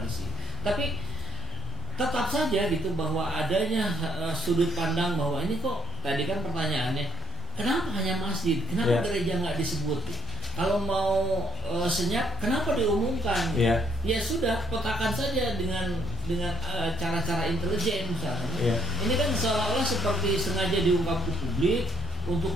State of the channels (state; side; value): normal; both; correlation 0.66